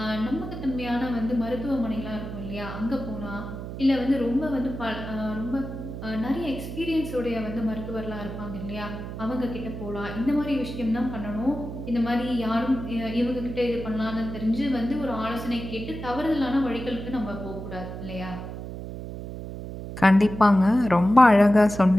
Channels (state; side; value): noise; right; hum, 8 dB below the sound